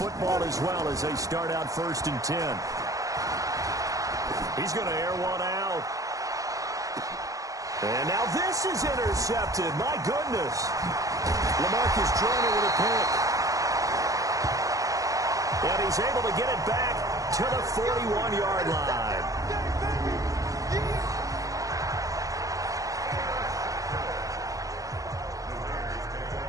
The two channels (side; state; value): left; late; 0.16 ms